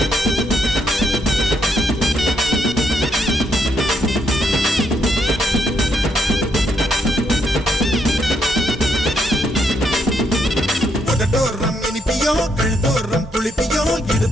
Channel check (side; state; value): both; normal; correlation 0.76